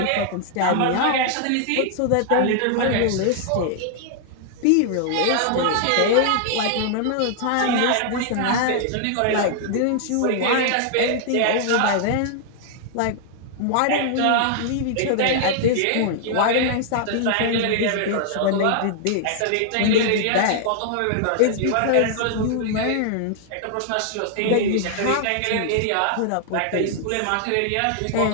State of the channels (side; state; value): both; different; correlation -0.01